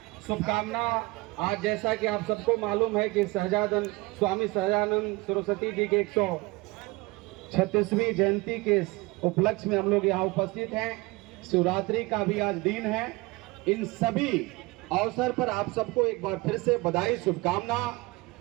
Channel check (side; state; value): left; quieter; 23.5 dB